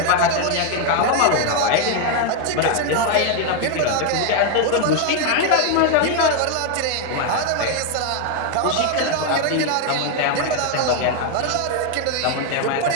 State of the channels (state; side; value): different; both; correlation 0.01